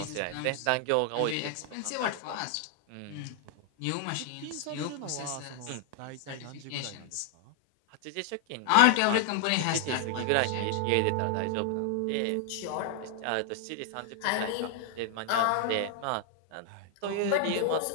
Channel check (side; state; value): both; different; correlation 0.00